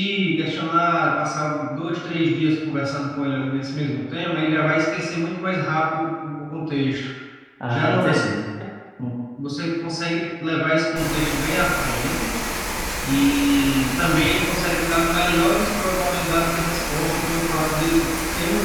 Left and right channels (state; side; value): identical; both; correlation 1.00